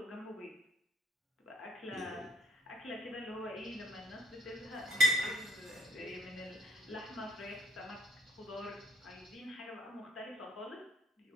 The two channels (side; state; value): both; normal; correlation 0.64